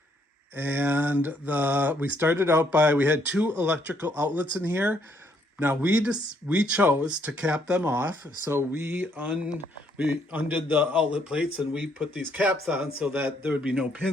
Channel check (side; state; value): both; normal; correlation 0.70